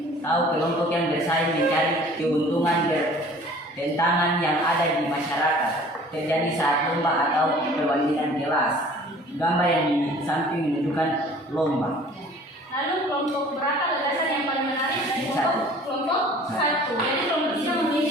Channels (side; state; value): both; normal; correlation 0.49